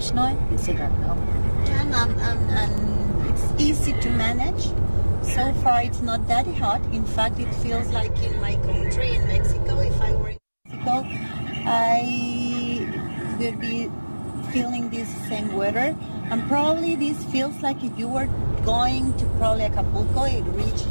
And it's easy to manage. So far, it's not that hot. In fact, it feels like in my country, in Mexico. If I were in Mexico, I would be feeling this same weather. And probably this feels like if you were going to probably Acapulco,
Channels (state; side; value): inverted; both; correlation -1.00